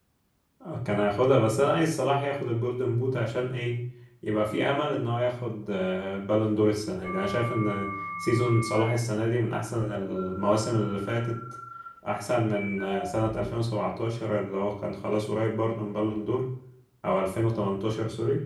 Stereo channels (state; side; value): identical; both; correlation 1.00